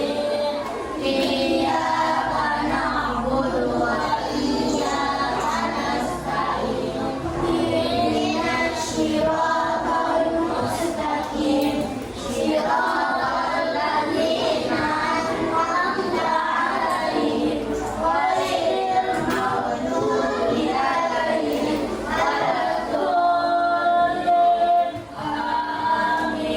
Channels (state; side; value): identical; both; correlation 1.00